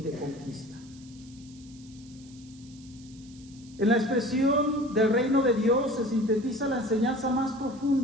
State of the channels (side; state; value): right; noise; hiss, 24 dB below the sound